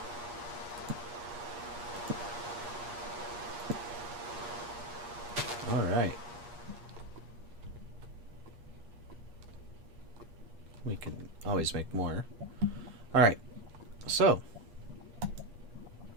Alright. We can always make more. Alright. So.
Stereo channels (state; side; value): late; left; 8.4 ms